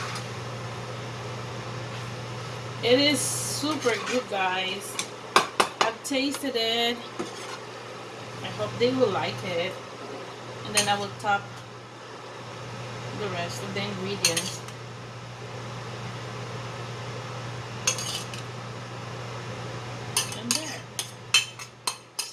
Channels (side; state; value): both; identical; correlation 1.00